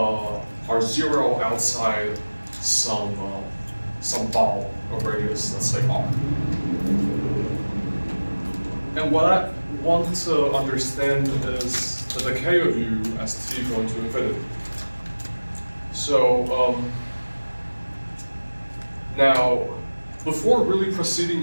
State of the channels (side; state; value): both; inverted; correlation -1.00